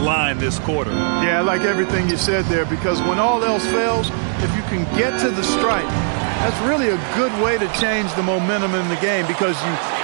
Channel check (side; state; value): left; silent; 63 dB below the other